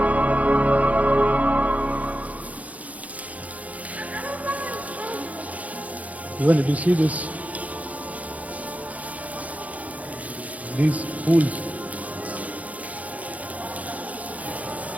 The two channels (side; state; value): left; late; 0.070 ms